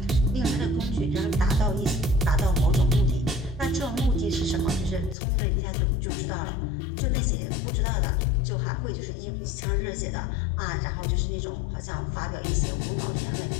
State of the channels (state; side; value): drops out; right; at 5.2 s